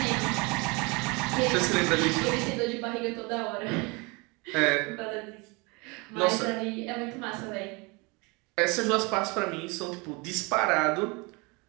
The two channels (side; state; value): left; quieter; 28.1 dB